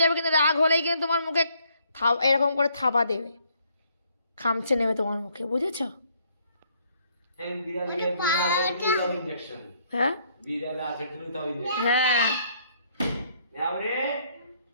যাবে, কিন্তু রাগ হলেই কিন্তু তোমার মুখে এরকম করে থাবা দেবে, খামচে নেবে তোমার মুখে, বুঝেছো? হ্যাঁ হ্যাঁ,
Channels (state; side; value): inverted; both; correlation -0.68